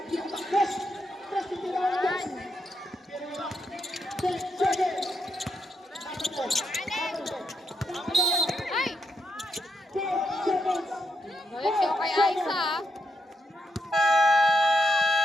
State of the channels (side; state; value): both; normal; correlation 0.81